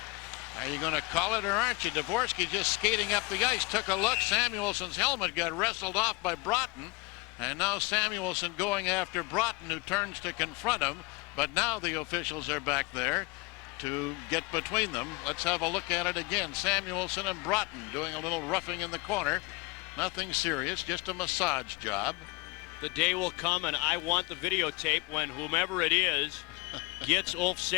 Are you going to call it or aren't you? Dvorsky just skating up the ice. Took a look. Samuelson's helmet got wrestled off by Broughton. And now Samuelson going after Broughton, who turns to confront him. But now the officials are back there to get between them. Let's have a look at it again. Samuelson and Broughton doing a little roughing in the corner. Nothing serious, just a massage job. The day will come, and I want the videotape when whomever it is gets Ulf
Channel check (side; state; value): right; quieter; 26.2 dB